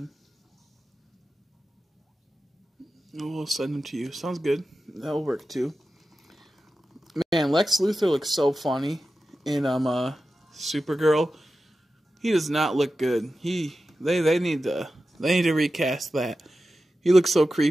We'll send them to you. Sounds good. That'll work too. Man, Lex Luthor looks so funny in Supergirl. He does not look good. They need to recast that. He looks so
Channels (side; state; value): both; normal; correlation 0.93